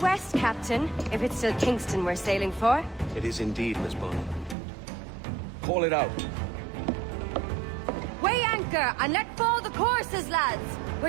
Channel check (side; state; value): left; drops out; at 4.5 s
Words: Captain, if it's still Kingston we're sailing for. It is indeed, Miss Bonnet. Call it out. Weigh anchor and let fall the courses, lads!